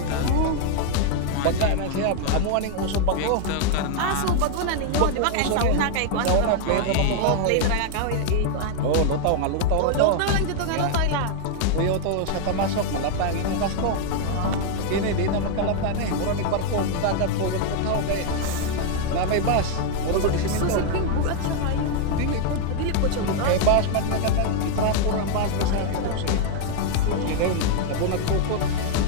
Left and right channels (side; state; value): both; different; correlation 0.00